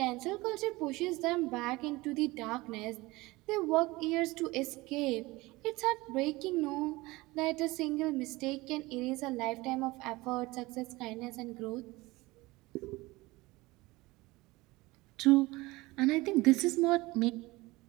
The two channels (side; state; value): left; quieter; 21.2 dB